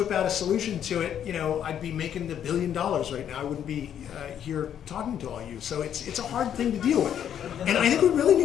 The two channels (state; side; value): quieter; right; 9.5 dB